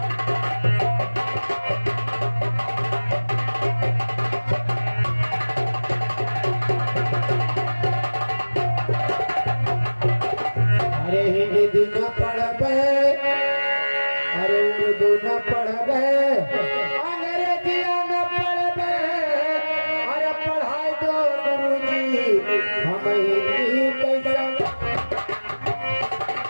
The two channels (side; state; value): both; inverted; correlation -1.00